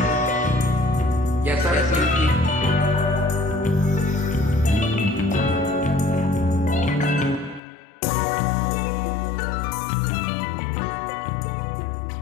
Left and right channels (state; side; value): drops out; right; at 7.6 s